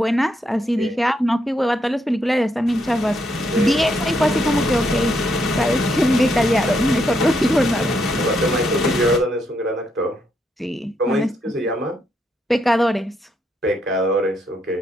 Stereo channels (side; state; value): both; normal; correlation 0.77